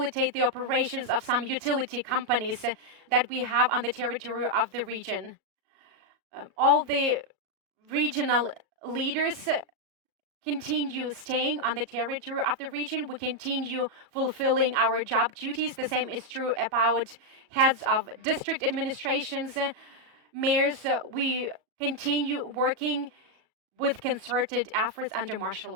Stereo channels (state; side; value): late; left; 37 ms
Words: the operations of some utility companies that we have on the territory of the region. All the regional leaders continue staying on the territory of the region. We continue fulfilling our job duties. The same is true about heads of district administrations, mayors. We continue working with concerted efforts under martial